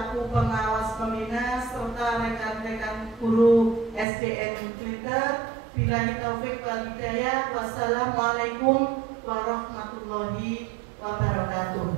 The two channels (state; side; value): drops out; left; at 4.0 s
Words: pengawas pembina serta rekan-rekan guru SDN Glitter. Billahi taufik wal hidayah. Wassalamualaikum warahmatullahi